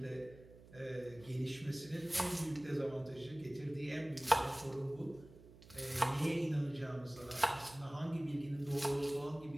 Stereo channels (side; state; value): right; noise; hum, 20 dB below the sound